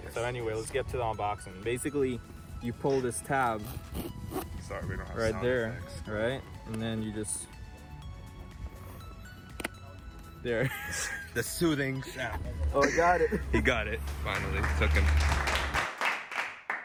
Yes. So anyway, let's get to the unboxing. Basically, you pull this tab Sorry, we don't have right sound there, effects. right? And then you just there. The soothing sound. Oh, I got it. He got it. Finally, took him.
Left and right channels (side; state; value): both; identical; correlation 1.00